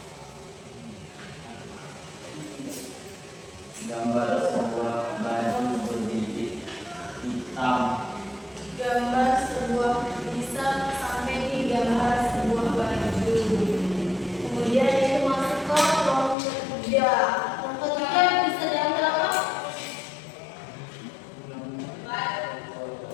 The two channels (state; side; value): drops out; right; at 16.4 s